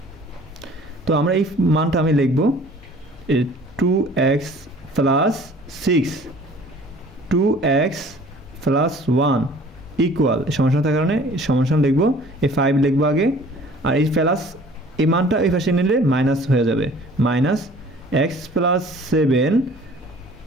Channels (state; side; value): normal; both; correlation 0.50